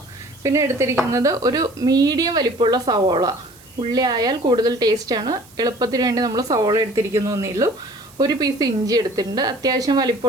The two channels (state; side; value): noise; right; hiss, 25 dB below the sound